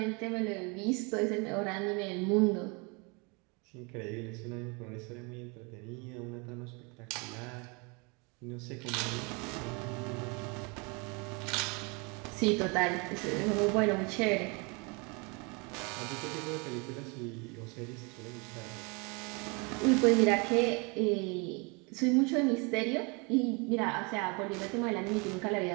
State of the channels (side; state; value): left; quieter; 30.7 dB